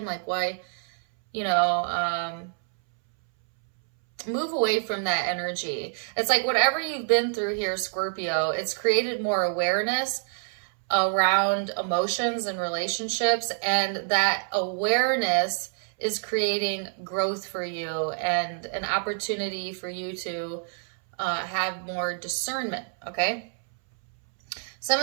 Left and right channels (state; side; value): silent; left; 60 dB below the other